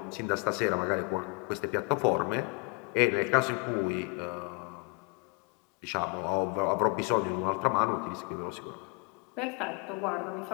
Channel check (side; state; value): right; quieter; 32.1 dB